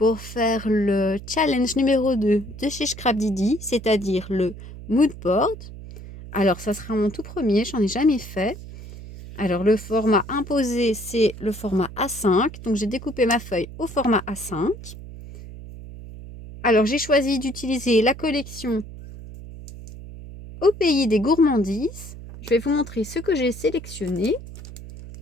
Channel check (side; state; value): right; noise; hum, 14 dB below the sound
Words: faire le challenge numéro 2 de chez Scrapdiddy, c'est-à-dire le mood board. Alors ça sera mon tout premier, j'en ai jamais fait. Alors le format imposé, c'est le format A5. Donc j'ai découpé ma feuille au format A5. Alors j'ai choisi d'utiliser la collection Au pays des gourmandises. Je vais vous montrer ce que j'ai sélectionné.